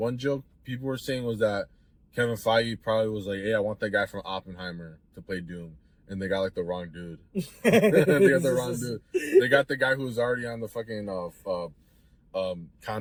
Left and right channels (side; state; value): both; identical; correlation 1.00